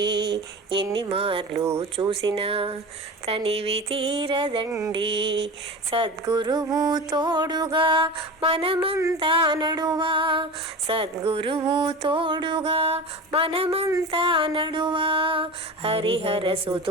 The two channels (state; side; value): normal; both; correlation 0.30